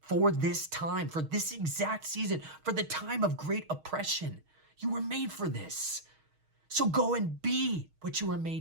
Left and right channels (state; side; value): late; left; 6.4 ms